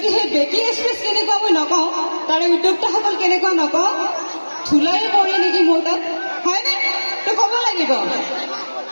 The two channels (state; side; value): inverted; both; correlation -1.00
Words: সেই বেকি এক্সপ্ৰেছ কেনেকুৱা মই নকওঁ তাৰে উদ্যোক্তাসকল কেনেকুৱা নকওঁ ধূলাই পৰে নেকি মোৰ তাত হয়নে তো ক'ব লাগিব